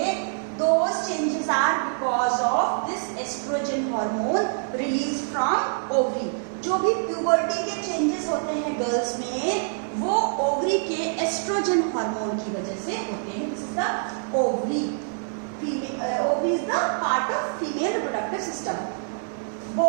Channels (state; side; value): silent; left; digital silence